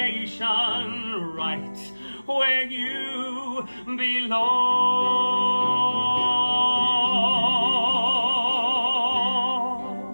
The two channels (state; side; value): inverted; both; correlation -1.00